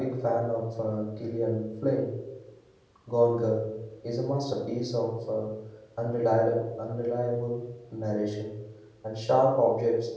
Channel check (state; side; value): identical; both; correlation 1.00